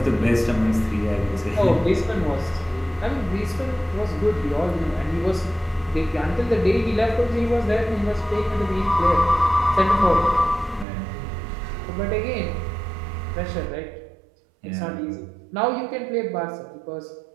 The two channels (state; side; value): drops out; left; at 10.9 s